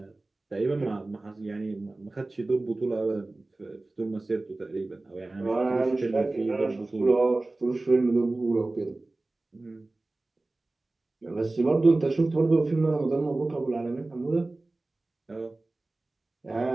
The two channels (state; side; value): quieter; left; 3.0 dB